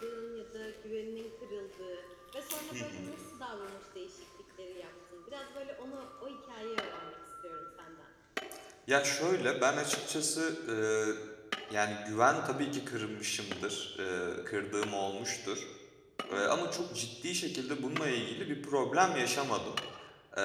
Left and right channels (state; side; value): identical; both; correlation 1.00